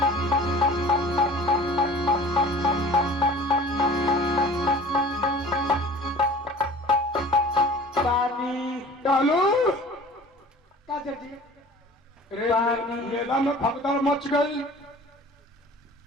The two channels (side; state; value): both; normal; correlation 0.45